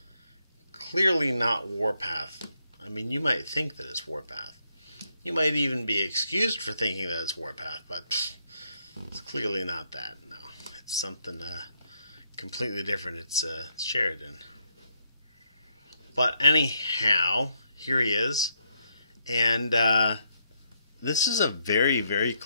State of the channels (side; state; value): both; inverted; correlation -0.77